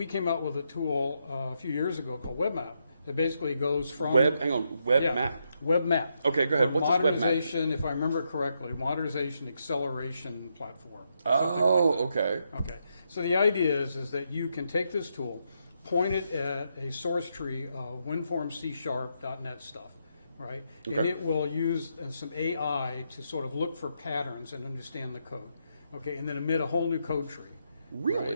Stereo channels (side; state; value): both; inverted; correlation -0.80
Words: came out with a tool a few years ago called WebMap that basically goes from... WebMap. WebMap. Okay, go ahead. What's WebMap? Modernization, if I remember correctly, modernization acceleration platform. Oh, okay. Okay. So the idea is that you can take this tool, point it at a source tree of WinForm C#.NET stuff, right? Okay. And it will use some AI to sort of look for patterns and understand the code, okay? And then emit a whole new code tree. Really?